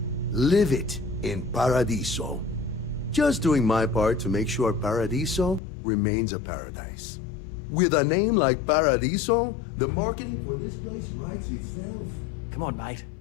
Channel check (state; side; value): drops out; right; at 5.6 s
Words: Live it in Paradiso. Just doing my part to make sure Paradiso remains a paradise. With a name like Paradiso, the marketing for this place writes itself. Come on, mate.